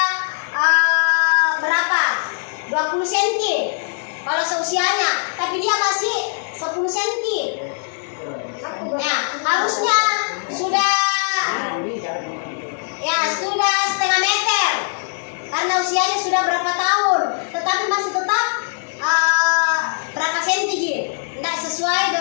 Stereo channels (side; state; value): right; silent; digital silence